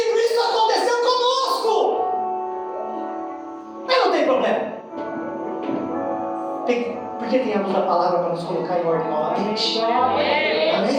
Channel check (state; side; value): identical; both; correlation 1.00